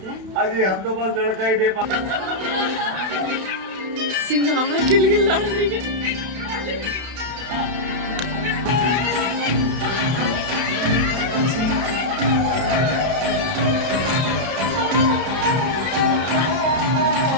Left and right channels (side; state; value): left; late; 32 ms